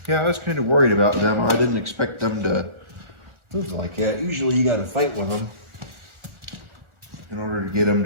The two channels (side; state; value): left; late; 1.4 ms